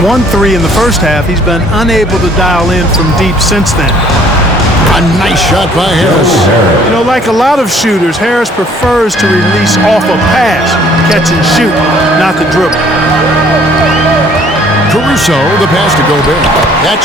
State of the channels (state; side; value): normal; both; correlation 0.58